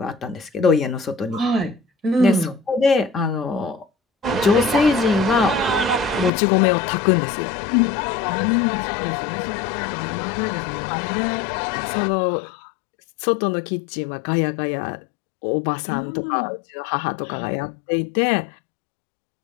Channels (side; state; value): right; drops out; at 6.3 s